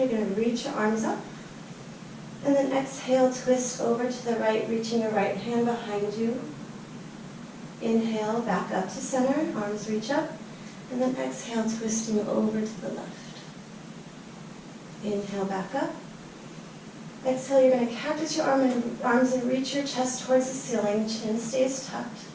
going to reach your arms up. And then exhale, twist over to the right, reaching your right hand behind you. Inhale, back up to center, arms reach up. And then exhale, twisting over to the left. Inhale, back up. Exhale, you're going to cactus your arms and reach your chest towards the ceiling. Chin stays tucked.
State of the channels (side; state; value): both; identical; correlation 1.00